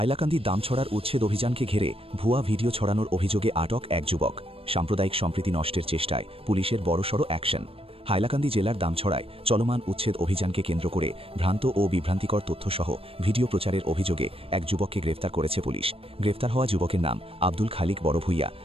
দামছড়ার উচ্ছেদ অভিযানকে ঘিরে ভুয়া ভিডিও ছড়ানোর অভিযোগে আটক এক যুবক। সাম্প্রদায়িক সম্প্রীতি নষ্টের চেষ্টায় পুলিশের বড়সড় অ্যাকশন। হাইলাকান্দি জেলার দামছড়ায় চলমান উচ্ছেদ অভিযানকে কেন্দ্র করে ভ্রান্ত ও বিভ্রান্তিকর তথ্যসহ ভিডিও প্রচারের অভিযোগে এক যুবককে গ্রেফতার করেছে পুলিশ। গ্রেফতার হওয়া যুবকের নাম আব্দুল খালিক বড়ভূইয়া।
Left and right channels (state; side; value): late; left; 0.28 ms